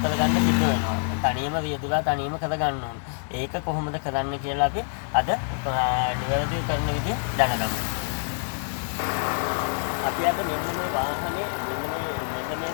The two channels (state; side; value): silent; right; 61 dB below the other